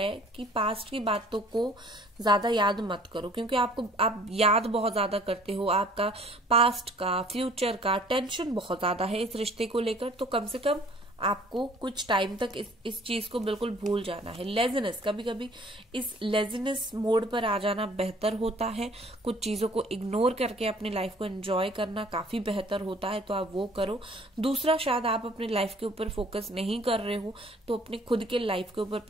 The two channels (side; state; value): both; normal; correlation 0.54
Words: कि पास्ट की बातों को ज्यादा याद मत करो, क्योंकि आप याद बहुत ज्यादा करते हो, आपका पास्ट का, फ्यूचर का टेंशन बहुत ज्यादा है इस रिश्ते को लेकर। तो कम से कम आपको कुछ टाइम तक इस चीज को बिल्कुल भूल जाना है। लेजीनेस, कभी कभी इस लेजीनेस मोड पर आ जाना बेहतर होता है। कुछ चीजों को इग्नोर करके अपनी लाइफ को एंजॉय करना काफी बेहतर होता है, तो आप वो करो। दूसरा, शायद आप अपनी लाइफ के ऊपर फोकस नहीं कर रहे हो, तो अपनी खुद के लाइफ के ऊपर